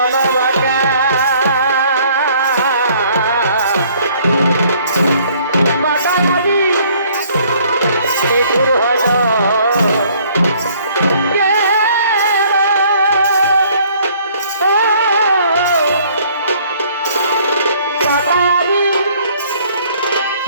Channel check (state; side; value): inverted; both; correlation -0.59